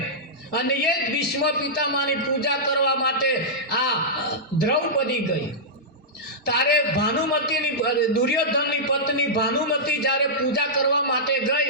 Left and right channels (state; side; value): normal; both; correlation -0.12